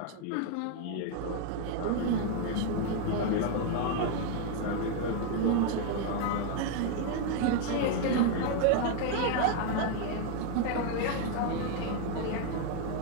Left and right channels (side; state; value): both; different; correlation 0.00